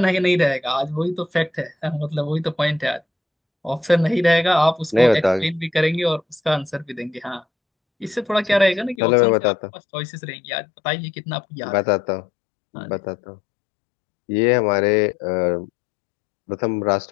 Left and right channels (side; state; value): right; drops out; at 9.0 s